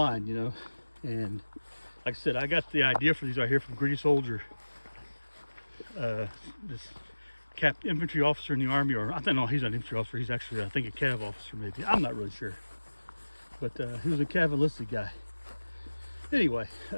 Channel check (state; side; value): inverted; both; correlation -1.00